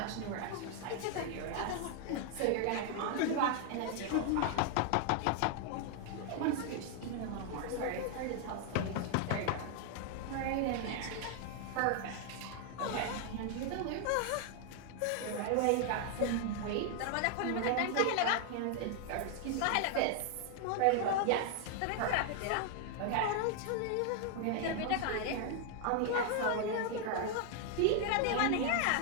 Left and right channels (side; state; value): both; different; correlation 0.00